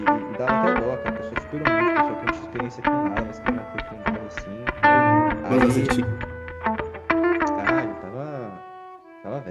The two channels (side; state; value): both; identical; correlation 1.00